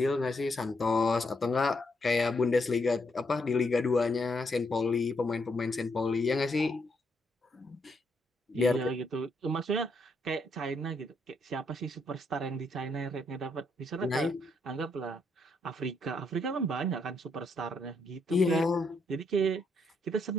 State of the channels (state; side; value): normal; both; correlation 0.76